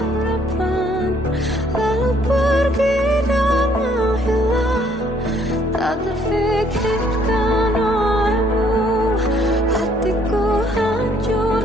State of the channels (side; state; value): both; normal; correlation 0.64